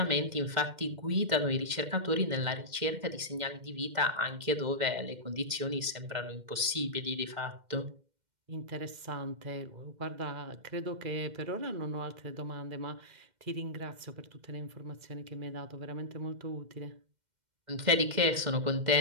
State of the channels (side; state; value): left; late; 2.1 ms